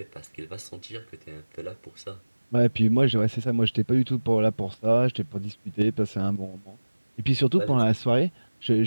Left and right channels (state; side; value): inverted; both; correlation -1.00